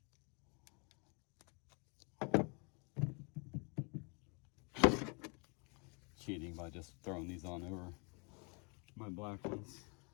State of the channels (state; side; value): quieter; right; 33.6 dB